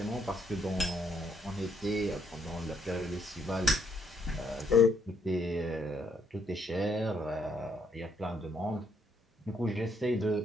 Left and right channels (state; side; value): normal; both; correlation 0.72